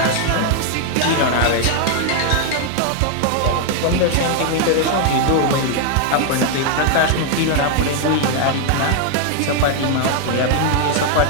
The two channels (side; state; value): both; different; correlation 0.00